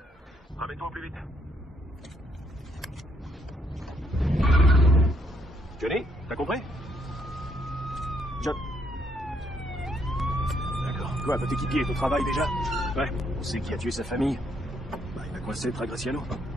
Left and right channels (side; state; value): both; normal; correlation 0.72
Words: Ramène-toi au plus vite. Johnny, t'as compris? John. D'accord. Quoi, votre équipier est au travail déjà? Ouais. On sait qui a tué sa famille. Bah, il a coincé Tragraciano.